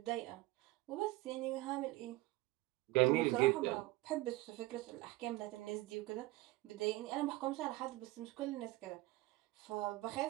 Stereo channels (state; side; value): quieter; left; 19.5 dB